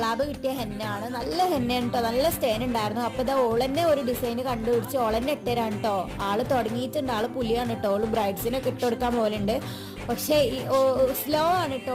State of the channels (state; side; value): identical; both; correlation 1.00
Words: കിട്ടിയ ഹെന്നാണ്. നല്ല ഹെന്നയാണ് കേട്ടോ, നല്ല സ്റ്റേൻ ഉണ്ടായിരുന്നു. അപ്പോൾ ഇതാ ഓളന്നെ ഒരു ഡിസൈൻ കണ്ടുപിടിച്ച് ഓളന്നെ ഇട്ടുതരാണ് കേട്ടോ. ആള് തുടങ്ങിയിട്ടുണ്ട്, ആള് പുലിയാണ് കേട്ടോ. ഓള് ബ്രൈഡ്സിനൊക്കെ ഇട്ടുകൊടുക്കാൻ പോലുണ്ട്. പക്ഷേ ഈ സ്ലോ ആണ്